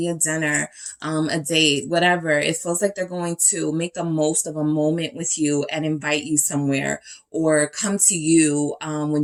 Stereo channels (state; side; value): identical; both; correlation 1.00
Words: a dinner, a date, whatever. It feels like they're going to make the most of a moment with you and invite you somewhere, or come to you when